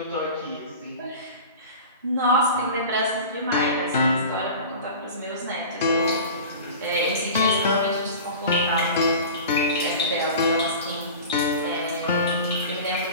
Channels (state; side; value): inverted; both; correlation -0.36